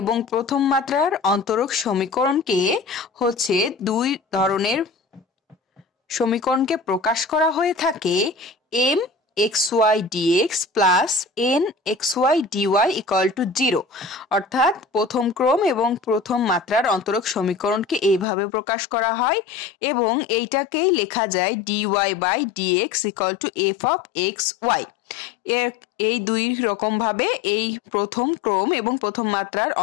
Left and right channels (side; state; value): right; drops out; at 18.2 s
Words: প্রথম মাত্রার অন্তরক সমীকরণকে হচ্ছে দুই ধরনের সমীকরণকে প্রকাশ করা হয়ে থাকে m x Y dx plus n x Y dy equal to 0। অর্থাৎ প্রথম ক্রম এবং প্রথম মাত্রার অন্তরক সমীকরণকে এইভাবে প্রকাশ করা হয় এবং এইটাকেই লেখা যায় dy by dx equal to f of x y. এই দুই রকম ভাবে এই প্রথম ক্রম এবং প্রথম মাত্রার